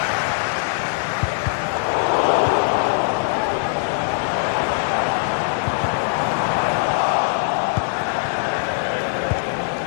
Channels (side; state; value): right; silent; digital silence